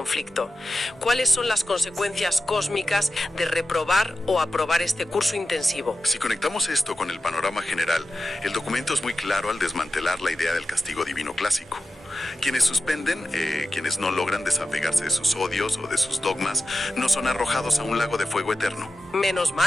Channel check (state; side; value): normal; both; correlation 0.93